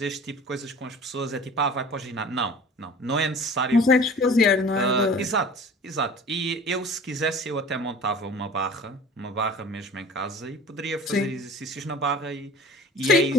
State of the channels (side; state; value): both; normal; correlation 0.44